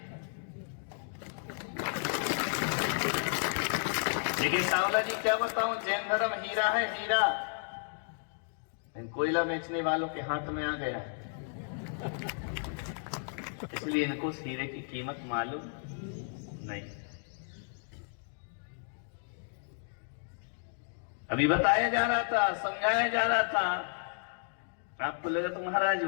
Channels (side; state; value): right; silent; digital silence